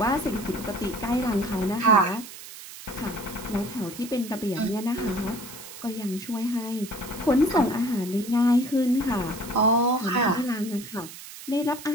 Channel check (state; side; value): noise; right; hiss, 14 dB below the sound